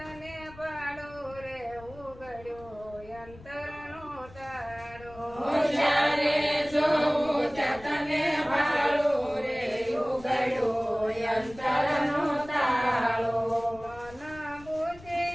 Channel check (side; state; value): left; noise; rumble, 20 dB below the sound